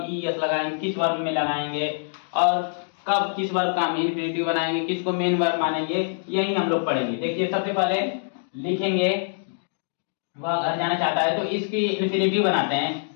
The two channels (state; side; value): silent; right; digital silence